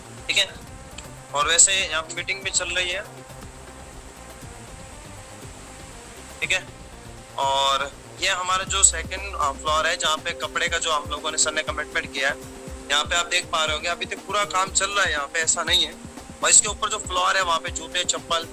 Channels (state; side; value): identical; both; correlation 1.00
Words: ठीक है। और वैसे यहाँ पे मीटिंग भी चल रही है, ठीक है। और ये हमारा जो सेकंड फ्लोर है जहाँ पे कपड़े का जो हम लोगों ने सर ने कमिटमेंट किया है, यहाँ पे आप देख पा रहे होंगे अभी तक पूरा काम चल रहा है यहाँ पे, ऐसा नहीं है। और इसके ऊपर जो फ्लोर है वहाँ पे जूते, चप्पल